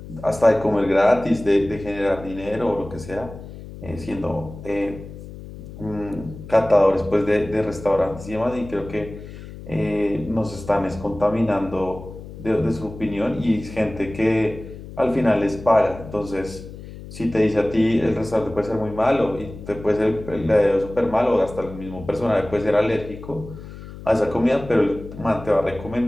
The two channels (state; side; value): noise; left; hum, 14 dB below the sound